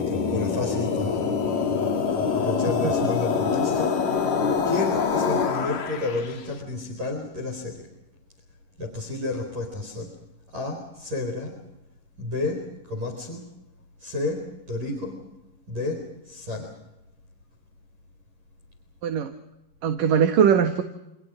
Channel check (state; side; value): late; left; 11 ms